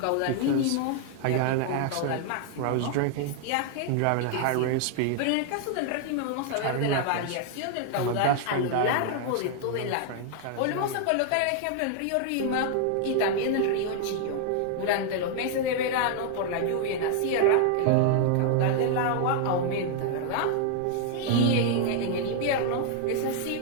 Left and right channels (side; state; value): both; different; correlation 0.00